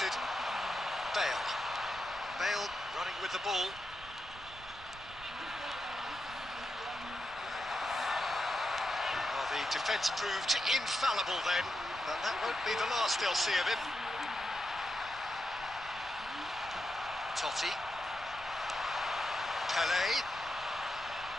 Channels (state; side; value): noise; right; rumble, 18 dB below the sound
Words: Bale. Bale running with the ball. Well, the defence proved infallible then, but that won't be the last they'll see of him. Totti. Pele.